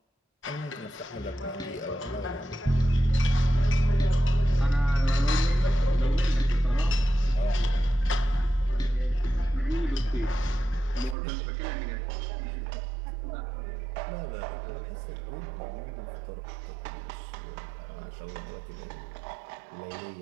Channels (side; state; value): left; drops out; at 11.2 s